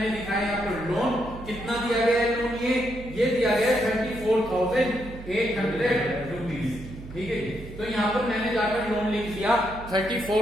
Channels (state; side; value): noise; right; hum, 13 dB below the sound